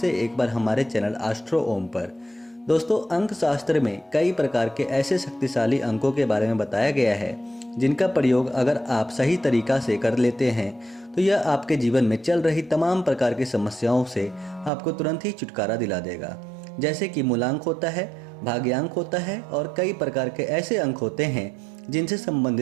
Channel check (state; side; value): drops out; left; at 14.7 s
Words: एक बार हमारे चैनल एस्ट्रो ओम पर। दोस्तों, अंक शास्त्र में कई प्रकार के ऐसे शक्तिशाली अंकों के बारे में बताया गया है जिनका प्रयोग अगर आप सही तरीका से कर लेते हैं तो यह आपके जीवन में चल रही तमाम प्रकार की समस्याओं से आपको तुरंत ही छुटकारा दिला देगा। जैसे कि मूलांक होता है, भाग्यांक होता है और कई प्रकार के ऐसे अंक होते हैं जिनसे